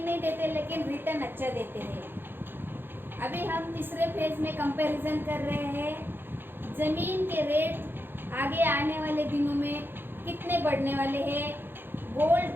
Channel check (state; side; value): late; left; 0.10 ms